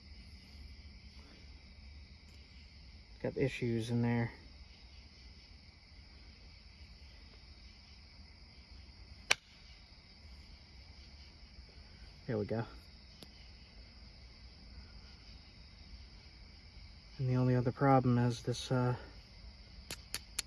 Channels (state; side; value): identical; both; correlation 1.00